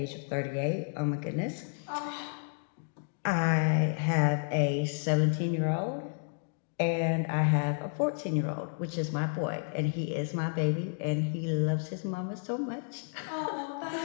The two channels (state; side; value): silent; right; digital silence